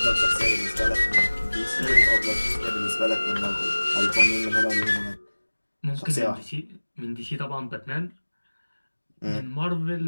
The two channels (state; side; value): inverted; both; correlation -1.00